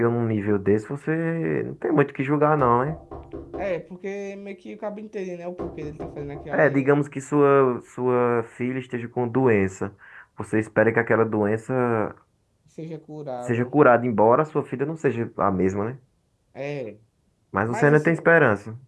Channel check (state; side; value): identical; both; correlation 1.00